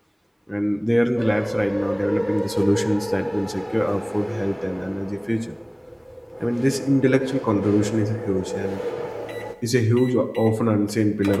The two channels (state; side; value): identical; both; correlation 1.00